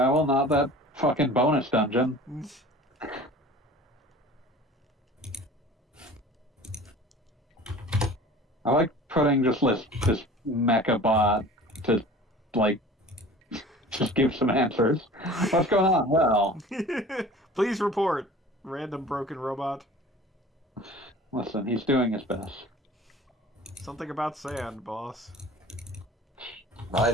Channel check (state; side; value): normal; both; correlation 0.43